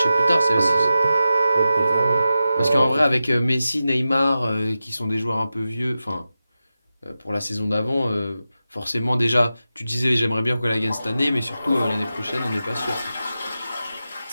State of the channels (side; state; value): both; inverted; correlation -0.93